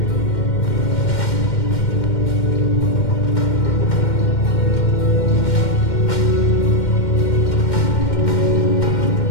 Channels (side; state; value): right; late; 2.1 ms